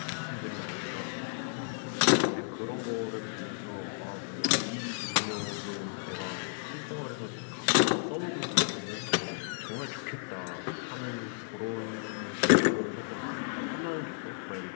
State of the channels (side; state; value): right; silent; 56 dB below the other